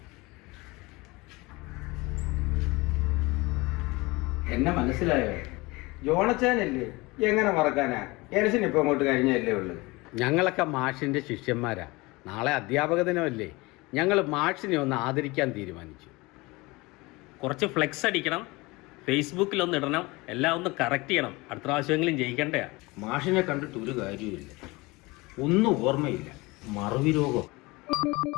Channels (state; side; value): quieter; right; 23.3 dB